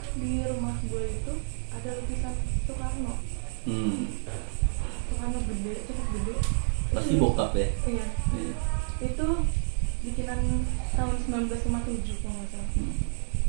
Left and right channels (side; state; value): left; silent; digital silence